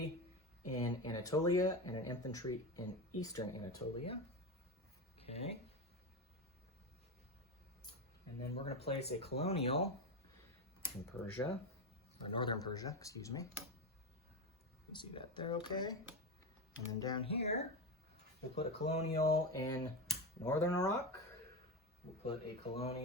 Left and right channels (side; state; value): both; normal; correlation 0.17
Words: in Anatolia and an infantry in eastern Anatolia. Okay. And then we're going to place a colonial in Persia, or northern Persia, excuse me. You see that there, okay? And then down here, we'll put a colonial in northern Iraq. We'll put a